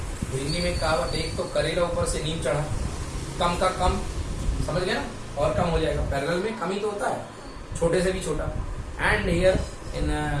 हिंदी में कहावत, एक तो करेला ऊपर से नीम चढ़ा, कम का कम, समझ गया ना, और कम हो जाएगा। पैरेलल में कम ही तो होता है, छोटे से भी छोटा। And here in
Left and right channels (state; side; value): identical; both; correlation 1.00